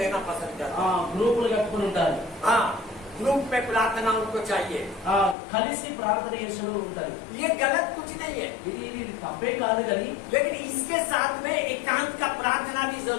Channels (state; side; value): drops out; right; at 5.4 s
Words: पसंद करता है। గ్రూపులు కట్టుకుని ఉంటారు. हाँ, ग्रुप में प्रार्थना उनको चाहिए। కలిసి ప్రార్థన చేస్తూ ఉంటారు. ये गलत कुछ नहीं है, ఇది తప్పే కాదు, కానీ लेकिन इसके साथ में एकांत का प्रार्थना भी